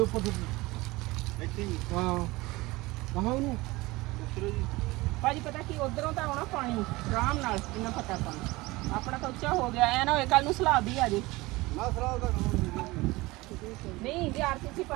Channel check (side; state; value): left; quieter; 21.3 dB